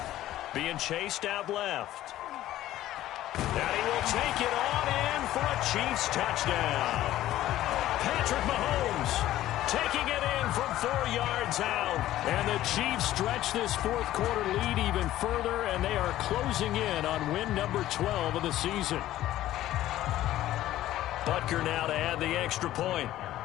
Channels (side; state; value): right; quieter; 14.1 dB